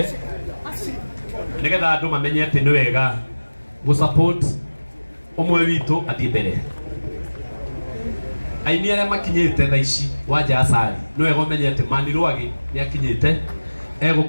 nĩgetha andũ mamenye atĩ nĩ wega gũ-support ũmwe witũ athiĩ mbere. Aini arĩa makinyĩte thaa ici Wanja Asali nĩ wega ũmenye atĩ Mani Rwagi nĩ akinyĩte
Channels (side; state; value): both; inverted; correlation -1.00